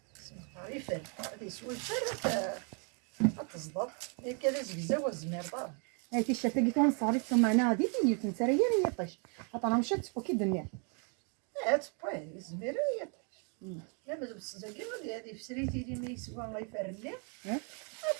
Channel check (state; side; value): quieter; left; 38.3 dB